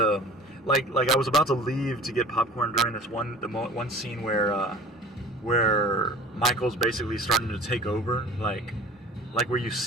like I was about to leave to get popcorn during this one scene where Michael's basically starting to take over, like where you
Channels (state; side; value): normal; both; correlation 0.43